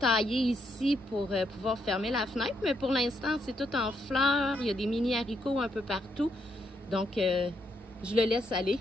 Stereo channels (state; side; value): normal; both; correlation 0.77